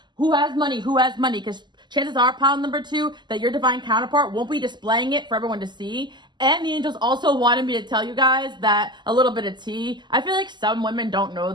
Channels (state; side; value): late; left; 0.21 ms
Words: who has money, because chances are, pile number 2, that your divine counterpart won't be displaying it for everyone to see. And the angels also wanted me to tell you guys that a little bit of tea. I feel like some women don't know